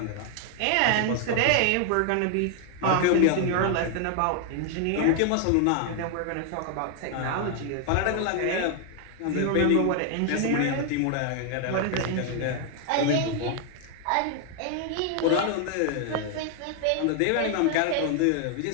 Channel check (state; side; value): different; both; correlation 0.00